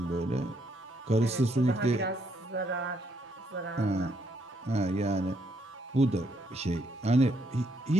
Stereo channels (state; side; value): normal; both; correlation 0.73